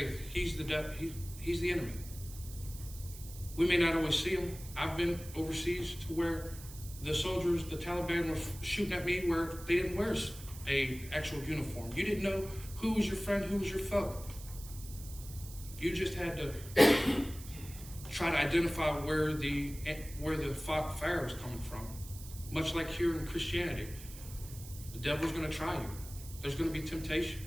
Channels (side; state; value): right; noise; hiss, 15 dB below the sound